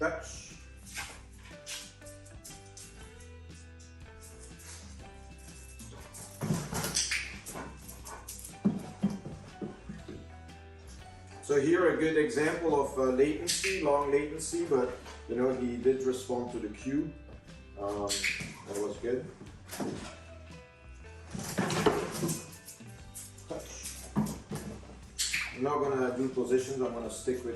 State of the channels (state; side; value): identical; both; correlation 1.00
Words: So here a good example of latency, long latency, but you know he did respond to the cue. That was good. Touch. I'm not gonna do positions. I'm gonna stick with